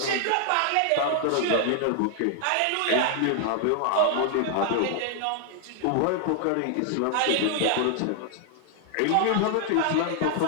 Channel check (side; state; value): both; different; correlation 0.00